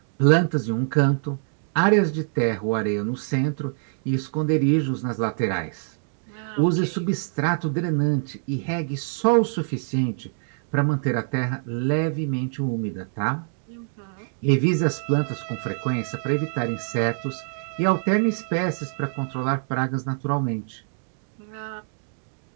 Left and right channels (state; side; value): silent; left; 62 dB below the other